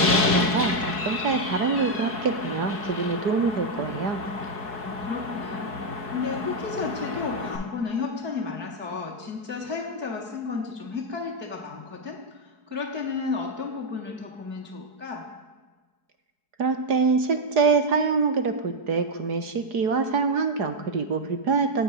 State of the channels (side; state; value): left; late; 4.6 ms